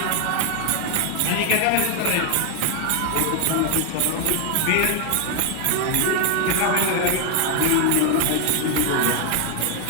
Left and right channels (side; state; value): both; different; correlation 0.01